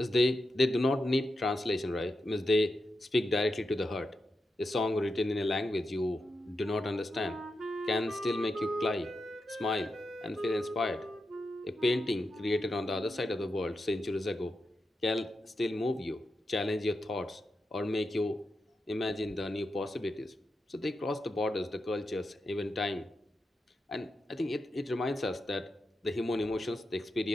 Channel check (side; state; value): both; normal; correlation 0.88